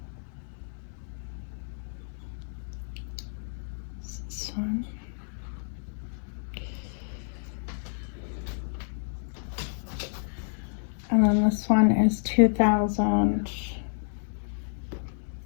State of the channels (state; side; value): silent; right; digital silence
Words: This one. And then this one is